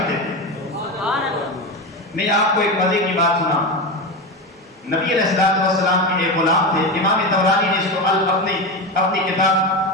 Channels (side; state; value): both; normal; correlation 0.19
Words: تھے۔ میں آپ کو ایک مزے کی بات سنا، نبی علیہ السلام کے ایک غلام تھے، امام طبرانی نے اس کو